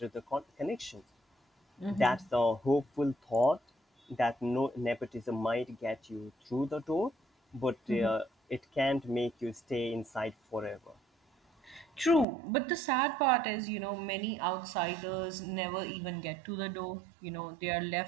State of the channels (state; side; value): drops out; left; at 12.2 s